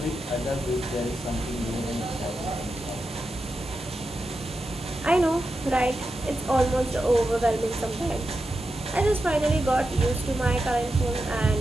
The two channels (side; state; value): both; normal; correlation 0.89